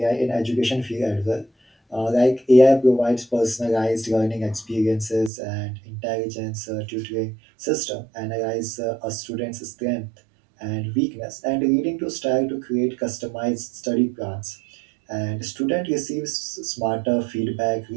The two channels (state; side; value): drops out; left; at 5.3 s